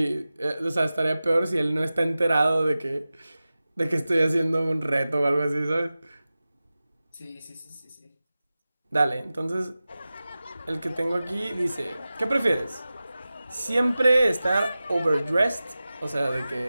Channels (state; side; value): inverted; both; correlation -0.96